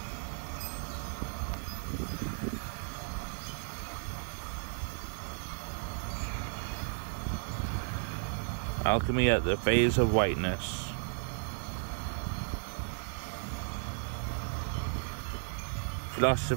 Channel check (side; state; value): left; silent; 55 dB below the other